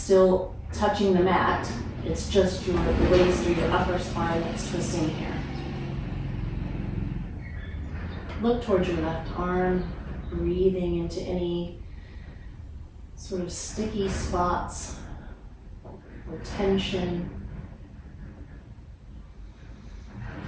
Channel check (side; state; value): both; identical; correlation 1.00